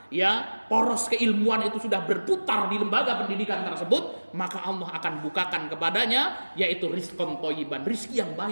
ya poros keilmuan itu sudah berputar di lembaga pendidikan tersebut, maka Allah akan bukakan kepadanya yaitu rizqan thayyiban, rizki yang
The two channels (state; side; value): inverted; both; correlation -1.00